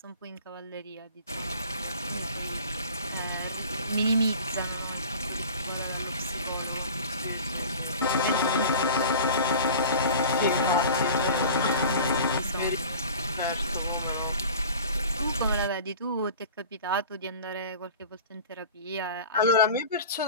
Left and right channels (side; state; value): both; inverted; correlation -0.40